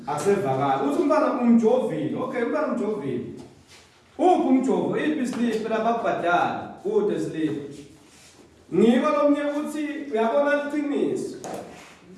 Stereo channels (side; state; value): both; identical; correlation 1.00